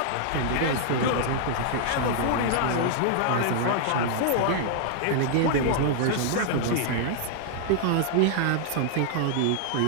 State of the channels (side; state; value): both; different; correlation -0.01